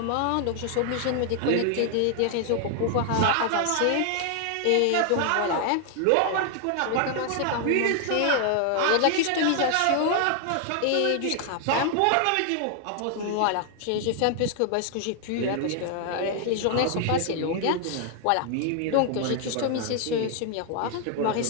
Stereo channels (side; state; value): both; different; correlation 0.00